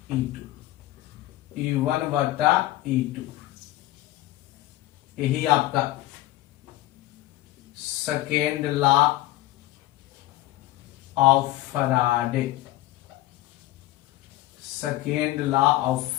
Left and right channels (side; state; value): right; quieter; 16.5 dB